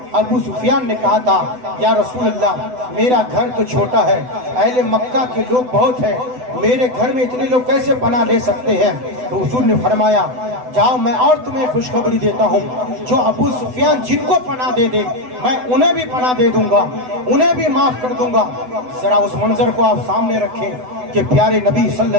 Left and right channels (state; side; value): late; left; 7.9 ms